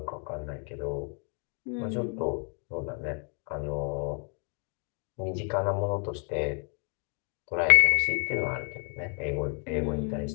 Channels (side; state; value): right; quieter; 39.9 dB